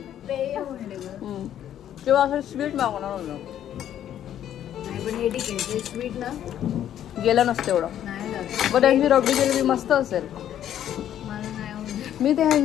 किंवा असं स्वीट मागवणार होतं, स्वीट ना गेलं नसतं एवढं, बट ह्यांची रबडी जिलेबी मस्त असेल। मी ते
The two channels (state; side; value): quieter; right; 10.8 dB